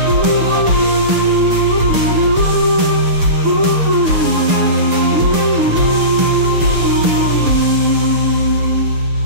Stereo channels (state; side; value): late; left; 6.6 ms